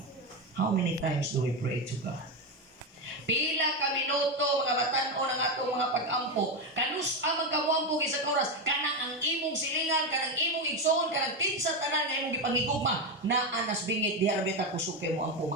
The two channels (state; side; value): normal; both; correlation 0.11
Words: How many times do we pray to God? Pila ka minuto mga batan-o ng atong mga pag-ampo. Kanus amang kamuampo sa oras, kanang ang imong silingan, kanang imong igsoon, kanang tinsa tanan nga imong gipangigugma na anas bingit diha ra beta kusog kay mo ampo